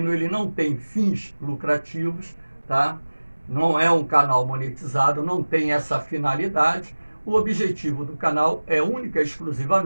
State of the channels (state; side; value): inverted; both; correlation -1.00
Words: ele não tem fins lucrativos, tá? Não é um canal monetizado, não tem essa finalidade. O objetivo do canal é única e